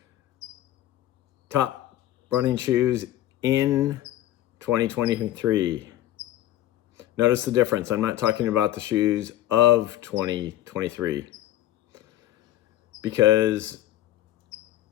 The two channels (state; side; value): quieter; right; 13.6 dB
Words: top running shoes in 2023. Notice the difference. I'm not talking about the shoes of 2023 because